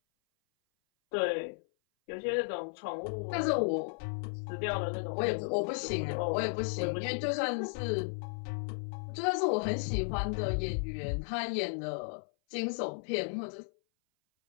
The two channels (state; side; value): silent; right; 55 dB below the other